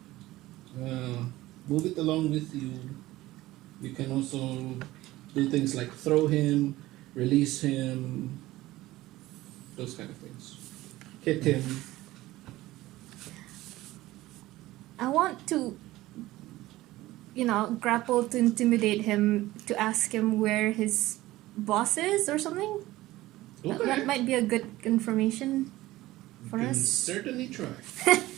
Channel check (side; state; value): left; quieter; 17.2 dB